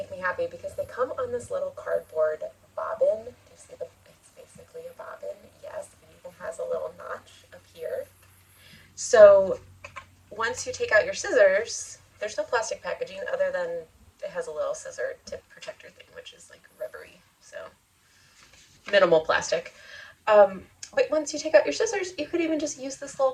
me happy because they come on this little cardboard bobbin. Do you see it's basically a bobbin? Yes, it even has a little notch up here. So once you take out your scissors, there's no plastic packaging other than it has a little scissor tip protector thing, which is like rubbery, so minimal plastic. But once you take out your scissors, you could even just use this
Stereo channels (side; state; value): both; identical; correlation 1.00